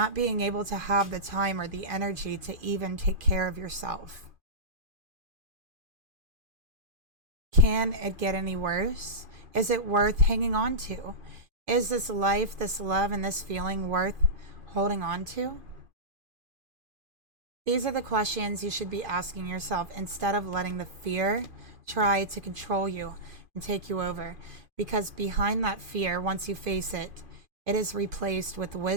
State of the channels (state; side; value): late; left; 2.5 ms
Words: being able to have the time or the energy to even take care of yourself? Can it get any worse? Is it worth hanging on to? Is this life, this love, and this feeling worth holding on to? These are the questions you should be asking yourself instead of letting the fear try to control you and take you over. Because behind that fear, once you face it, it is replaced with